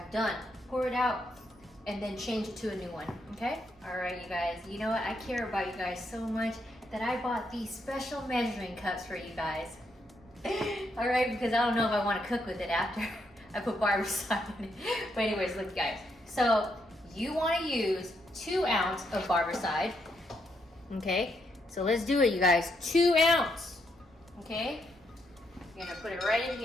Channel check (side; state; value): both; normal; correlation 0.78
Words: done. Pour it out and then change it to a new one, okay? All right, you guys, you know what? I care about you guys so much that I bought these special measuring cups for you guys. All right, because I don't know if I want to cook with it after I put Barbicide in it. But anyways, look, guys. So you want to use 2 ounces of Barbicide, okay? So let's do it, you guys. 2 ounces, okay? You're gonna put it right in